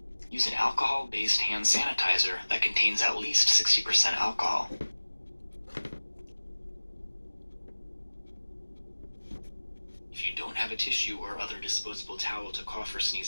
use an alcohol-based hand sanitizer that contains at least 60% alcohol. If you don't have a tissue or other disposable towel to cough or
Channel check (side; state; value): both; inverted; correlation -1.00